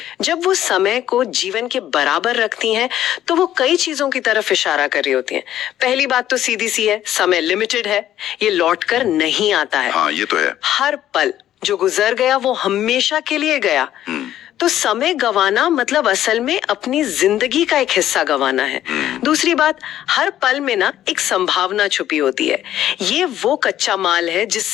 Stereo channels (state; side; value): quieter; right; 12.1 dB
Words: जब वो समय को जीवन के बराबर रखती हैं, तो वो कई चीजों की तरफ इशारा कर रही होती हैं। पहली बात तो सीधी सी है, समय लिमिटेड है, ये लौट कर नहीं आता है। हाँ, ये तो है। हर पल जो गुजर गया वो हमेशा के लिए गया। तो समय गंवाना मतलब असल में अपनी जिंदगी का एक हिस्सा गंवाना है। दूसरी बात, हर पल में ना एक संभावना छुपी होती है। ये वो कच्चा माल है